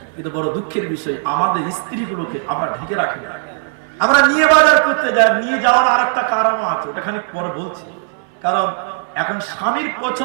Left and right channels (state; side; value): silent; left; 59 dB below the other